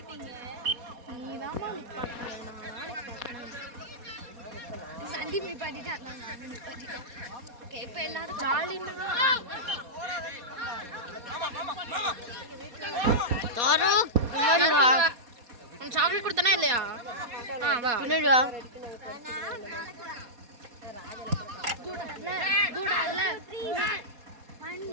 சந்தீப் நிப்பாட்டிட்டான். ஓகே இப்போ எல்லாரும் தாரூக் பின்னாடி வா. உன் சாக்லேட் கொடுத்தனா இல்லையா? வா பின்னாடி வா.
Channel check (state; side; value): late; left; 4.2 ms